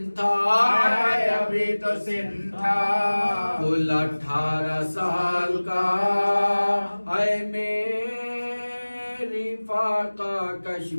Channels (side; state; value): both; inverted; correlation -1.00